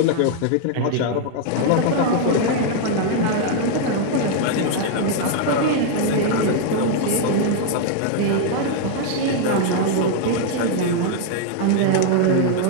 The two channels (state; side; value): different; both; correlation 0.00